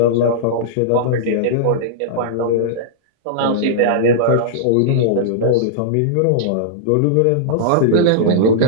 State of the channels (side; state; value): both; different; correlation -0.02